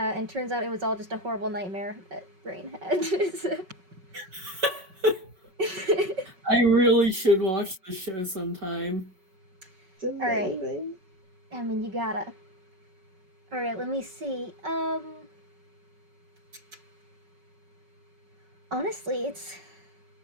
turns out it was all just a horrible nightmare that Brain had. I really should watch the show sometime. Alright. I mean, you gotta. Alright, let me see. Honestly,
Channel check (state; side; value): late; left; 5.3 ms